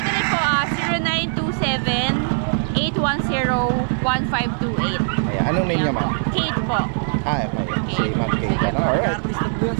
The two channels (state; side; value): silent; left; digital silence